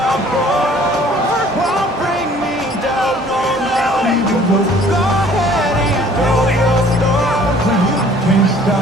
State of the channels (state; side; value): normal; both; correlation 0.54